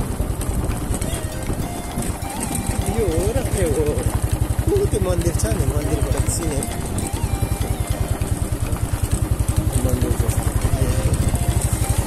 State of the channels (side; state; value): both; identical; correlation 1.00